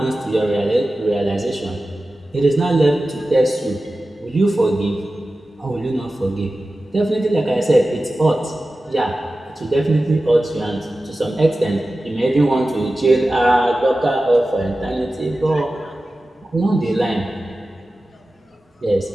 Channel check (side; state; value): both; normal; correlation 0.95